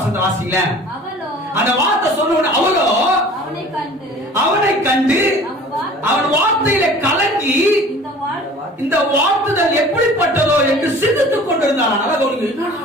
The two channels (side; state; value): both; normal; correlation 0.46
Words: வாசிங்களேன். அந்த வார்த்தை சொன்ன அவளோ அவனை கண்டு அவன் வார்த்தையில கலங்கி இந்த வார்த்தைகள் எப்படிப்பட்டதோ என்று சிந்தித்துக் கொண்டிருந்தான்.